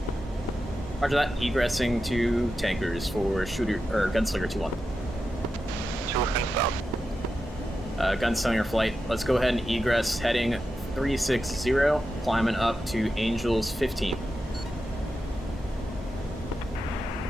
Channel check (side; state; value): both; normal; correlation 0.90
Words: Roger that. Egressing to tankers for Gunslinger 2-1. 2 and south. Gunslinger flight. Let's go ahead and egress heading 360, climbing up to Angels 15.